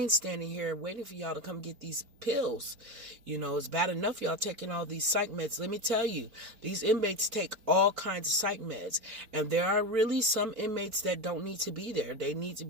standing here waiting for y'all to come get these pills. It's bad enough y'all taking all these psych meds. Let me tell you, these inmates take all kinds of psych meds, and there are really some inmates that don't need to be there. They need to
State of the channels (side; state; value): left; late; 4.3 ms